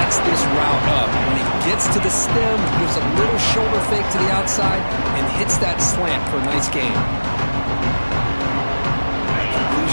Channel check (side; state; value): both; inverted; correlation -1.00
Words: this route up. When he gets to the stem, gives a little shoulder fake to the outside, and hits that slant for a nice gain.